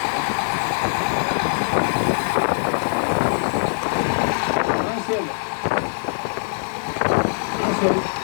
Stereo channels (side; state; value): right; silent; 60 dB below the other